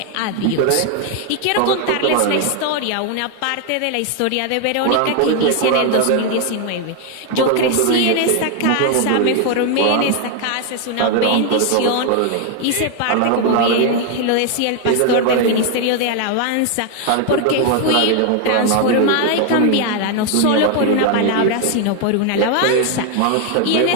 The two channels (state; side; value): different; both; correlation 0.01